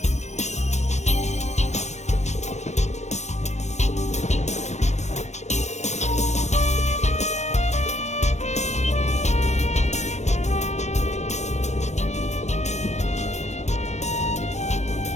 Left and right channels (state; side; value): late; right; 0.33 ms